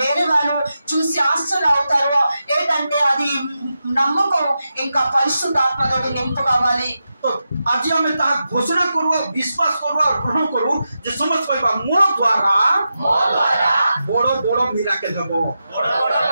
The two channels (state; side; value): inverted; both; correlation -0.89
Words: వాళ్ళు చూసి ఆశ్చర్య అవుతారు ఏంటంటే అది నమ్మకం ఇంకా పరిశుద్ధాత్మతోటి నింపు కావాలి तो आज हमें ता घोषणा करू विश्वास करू और ग्रहण करू जे समझ पाइबा मोर द्वारा बड़ो मिराकल हेबो